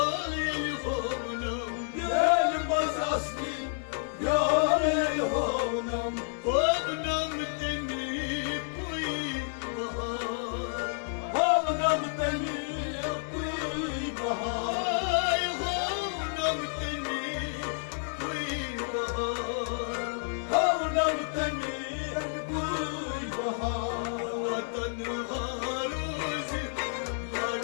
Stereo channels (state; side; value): silent; right; 58 dB below the other